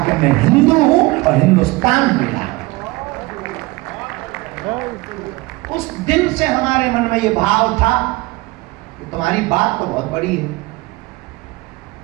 कि मैं हिंदू हूं और हिंदुस्तान मिला। उस दिन से हमारे मन में ये भाव था कि तुम्हारी बात तो बहुत बड़ी है।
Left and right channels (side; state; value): left; quieter; 22.0 dB